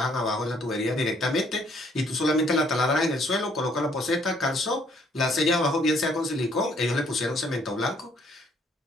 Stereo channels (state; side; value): normal; both; correlation 0.65